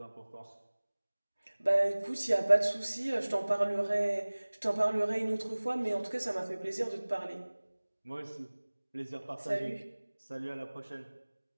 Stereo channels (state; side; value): inverted; both; correlation -1.00